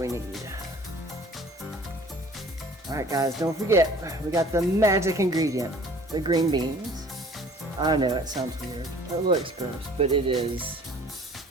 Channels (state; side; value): normal; both; correlation 0.50